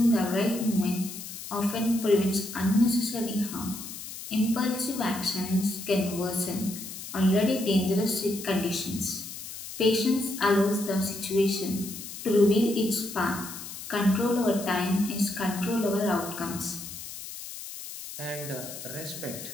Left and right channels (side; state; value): left; noise; hiss, 11 dB below the sound